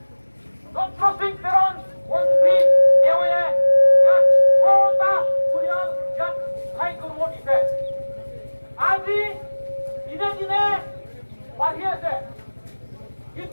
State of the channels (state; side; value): inverted; both; correlation -1.00